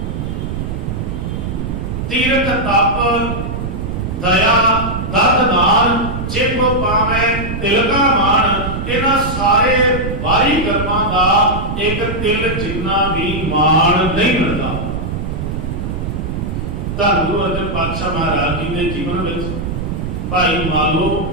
ਤੀਰਥ ਤਪ, ਦਇਆ, ਦਰਦ ਦਾਨ, ਜਿਬ ਪਾਵੈ ਤਿਲਕਾ ਮਾਣ, ਇਹਨਾਂ ਸਾਰੇ ਬਾਹਰੀ ਕਰਮਾਂ ਦਾ ਇੱਕ ਤਿਲ ਜਿੰਨਾ ਵੀ ਮਾਣ ਨਹੀਂ ਮਿਲਦਾ। ਧੰਨ ਗੁਰੂ ਅਰਜਨ ਪਾਤਸ਼ਾਹ ਮਹਾਰਾਜ ਜੀ ਦੇ ਜੀਵਨ ਵਿੱਚ ਭਾਈ ਮਾਲੋ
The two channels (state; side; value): noise; right; rumble, 4 dB below the sound